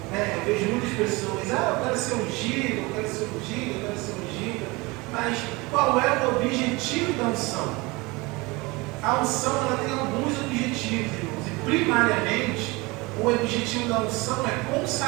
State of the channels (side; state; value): left; quieter; 24.3 dB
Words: Eu vejo muitas pessoas, eu quero ser ungido, eu quero ser ungido, eu quero ser ungido. Mas qual é o objetivo da unção? A unção ela tem alguns objetivos, irmãos. E primariamente, o objetivo da unção é